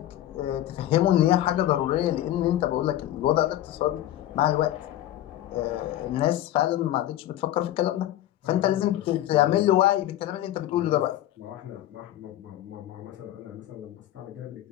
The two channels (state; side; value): quieter; right; 13.2 dB